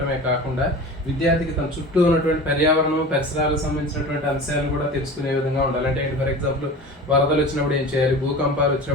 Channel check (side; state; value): both; normal; correlation 0.35